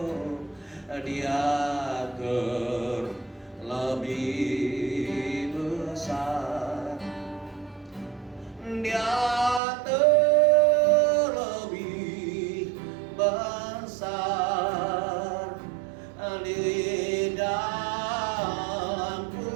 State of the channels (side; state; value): left; drops out; at 9.6 s